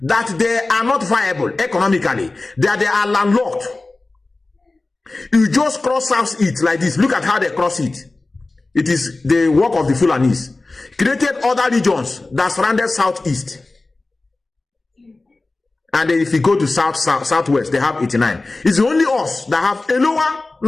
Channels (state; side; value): quieter; right; 3.2 dB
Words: that they are not viable economically, that they are landlocked. You just cross Southeast like this. Look at how they cross it. It is the work of the Fulanis. Created other regions that surrounded Southeast. And then if you go to Southwest, they have 89. It's only us that have a lower